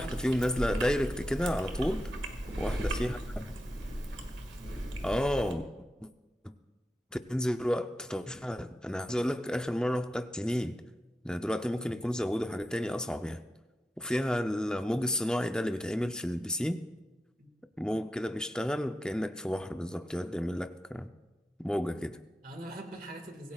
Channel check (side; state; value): both; normal; correlation 0.90